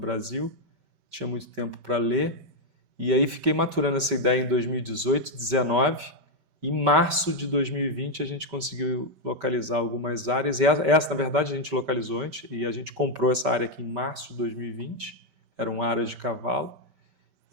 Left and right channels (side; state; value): left; late; 5.2 ms